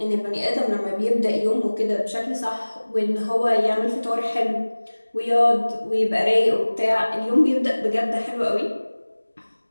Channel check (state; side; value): inverted; both; correlation -1.00